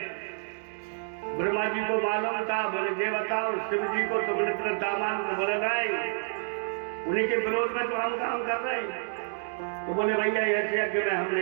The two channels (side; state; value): left; silent; digital silence